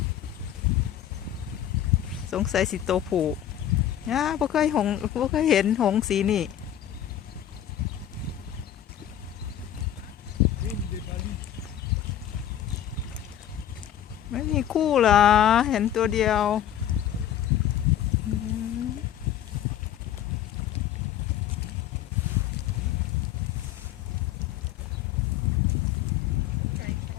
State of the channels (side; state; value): right; quieter; 10.9 dB